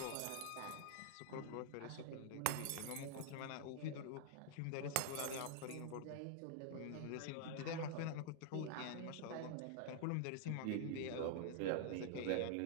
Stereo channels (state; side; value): different; both; correlation -0.01